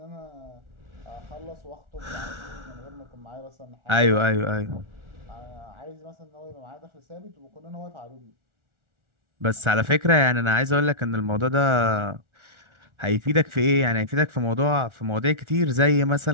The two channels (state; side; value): late; left; 1.4 ms